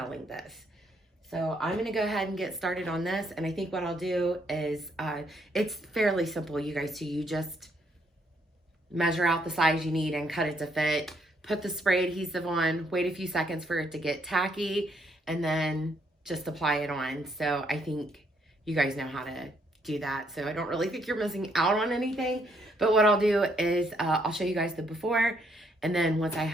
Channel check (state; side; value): normal; both; correlation 0.71